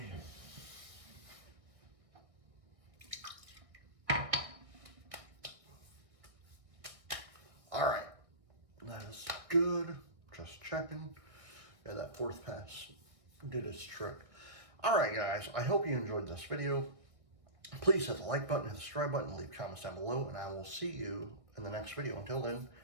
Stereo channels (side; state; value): left; late; 1.6 ms